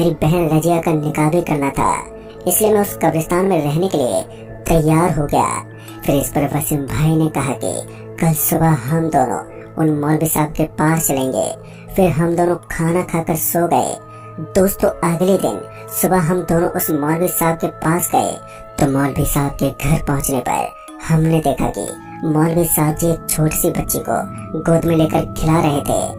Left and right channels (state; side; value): identical; both; correlation 1.00